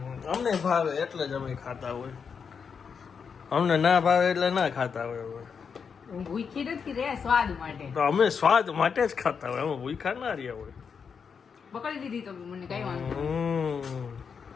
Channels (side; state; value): right; quieter; 6.2 dB